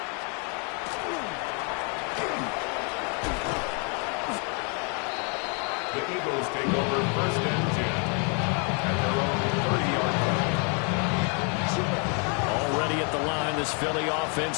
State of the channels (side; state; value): right; quieter; 37.4 dB